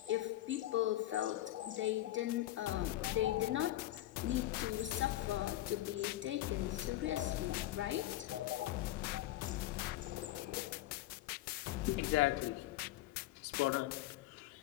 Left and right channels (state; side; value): quieter; right; 15.3 dB